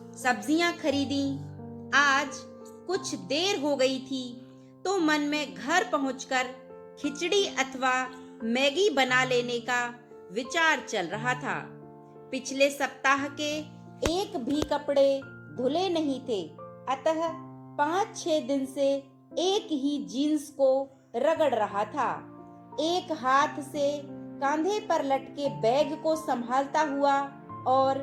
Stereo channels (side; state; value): both; identical; correlation 1.00